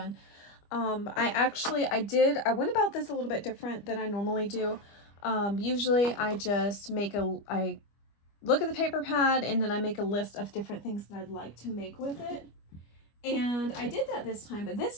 I went about this a little bit different than I normally do. Usually I just I look at the paper pad and then I make a list of different things that I'd like to make with it. And I did that this time, but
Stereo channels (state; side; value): late; right; 25 ms